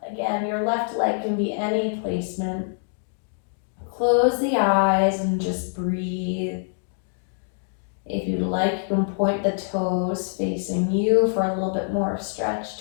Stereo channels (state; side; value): silent; right; digital silence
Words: Again, your left leg can be any placement. Close the eyes and just breathe. If you'd like, you can point the toes facing you for a little bit more stretch